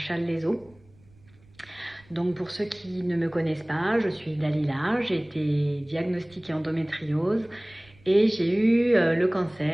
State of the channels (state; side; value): noise; right; rumble, 28 dB below the sound